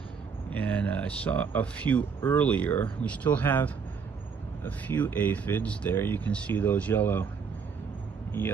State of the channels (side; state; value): left; quieter; 6.0 dB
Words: and I saw a few earlier. We still have a few aphids there. You can see those yellow